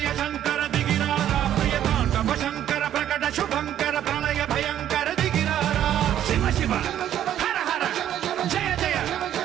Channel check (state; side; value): quieter; left; 11.1 dB